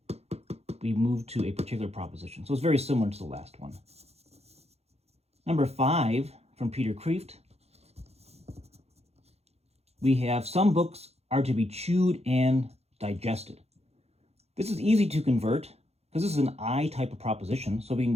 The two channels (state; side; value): late; left; 0.30 ms